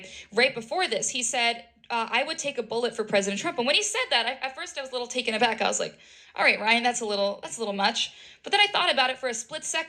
Right before this, he said, I would take a bullet for President Trump. And when he said that, at first I was a little taken aback. I was like, all right, Ryan, that's a little much. But then I thought about it for a split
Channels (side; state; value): both; identical; correlation 1.00